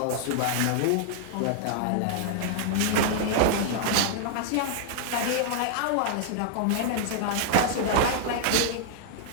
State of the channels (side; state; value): both; different; correlation -0.01